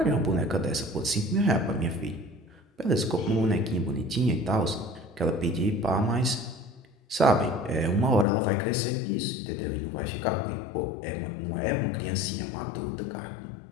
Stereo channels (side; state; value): right; drops out; at 8.2 s